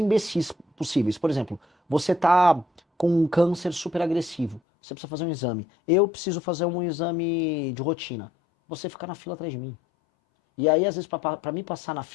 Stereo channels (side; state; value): right; drops out; at 4.6 s